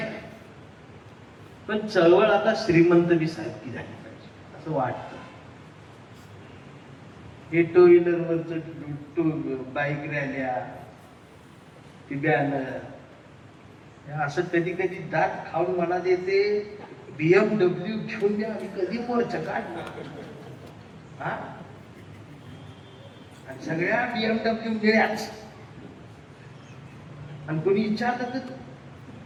आहे, पण चळवळ आता श्रीमंत बी सारखी झाली पाहिजे असं वाटतं. हे टू व्हीलरवरच बाईक रॅल्या, ती बॅनर, असं कधी कधी दात खाऊन मनात येते BMW घेऊन द्या, आम्ही कधी मोर्चा काढणार. आणि सगळ्या BMW मिळ्याच. आणि कोणी विचारलं तर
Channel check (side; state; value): both; identical; correlation 1.00